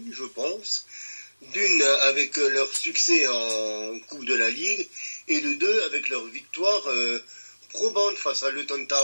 je pense. D'une, avec leur succès en Coupe de la Ligue, et de deux, avec leur victoire probante face à Luton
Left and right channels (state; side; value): inverted; both; correlation -1.00